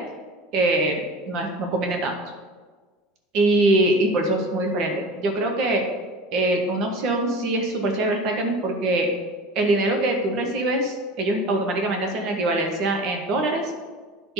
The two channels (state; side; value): normal; both; correlation 0.36